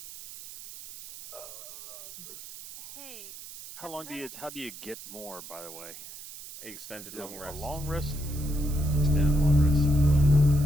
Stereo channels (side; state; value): right; noise; hiss, 14 dB below the sound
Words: Hey. How do you get more, by the way? Extended Is it long rest. A long rest? Extended long rest.